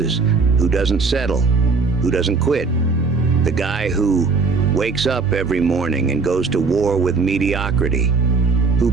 who doesn't settle, who doesn't quit. The guy who wakes up every morning and goes to war with mediocrity, who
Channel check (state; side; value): quieter; left; 4.5 dB